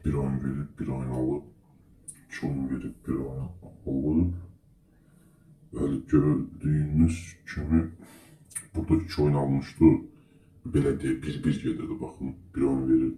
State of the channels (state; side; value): identical; both; correlation 1.00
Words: bir oyun verib, bir oyun alıb. 2 oyun verib, bir oyun alıb. Bəli, gördüyünüz kimi burada 2 oyun almışdı. Belə deyə bir gedirdi, baxın. Bir oyun